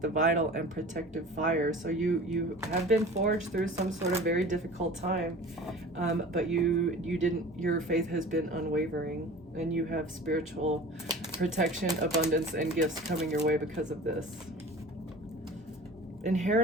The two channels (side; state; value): both; normal; correlation 0.40